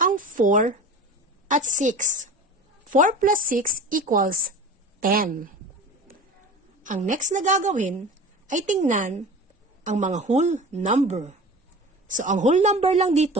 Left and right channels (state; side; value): normal; both; correlation 0.36